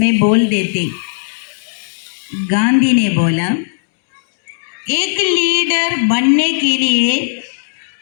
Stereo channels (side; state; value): right; silent; digital silence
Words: बोल देते। गांधी ने बोला, एक लीडर बनने के लिए